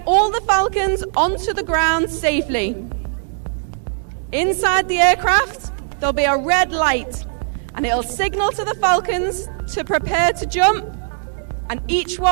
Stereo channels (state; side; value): silent; left; digital silence